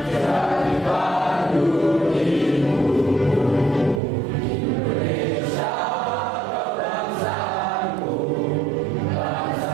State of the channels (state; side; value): drops out; left; at 4.0 s